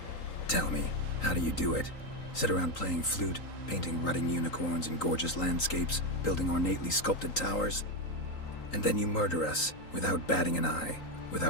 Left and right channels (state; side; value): late; right; 3.9 ms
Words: Tell me, how do you do it? Sit around playing flute, painting rutting unicorns in gorgeous landscapes, building ornately sculpted towers? And then you murder us, without batting an eye,